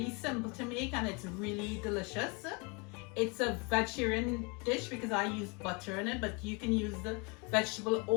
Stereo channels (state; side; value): quieter; right; 31.0 dB